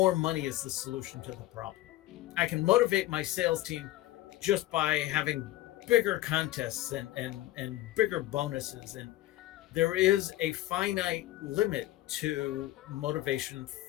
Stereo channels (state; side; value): quieter; right; 15.9 dB